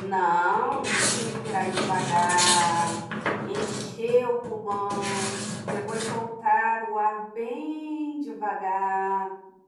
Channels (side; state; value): both; identical; correlation 1.00